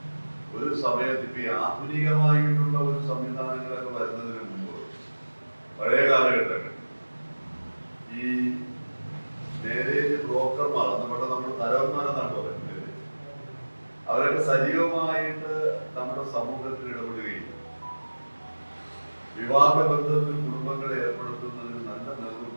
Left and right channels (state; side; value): inverted; both; correlation -1.00